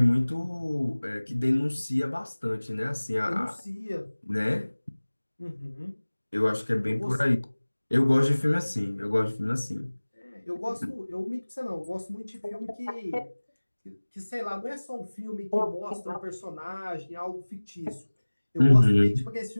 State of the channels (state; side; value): inverted; both; correlation -1.00